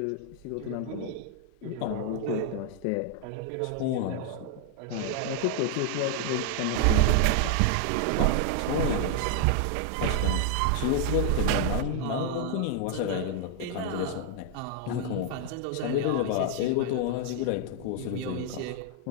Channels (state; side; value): different; both; correlation 0.00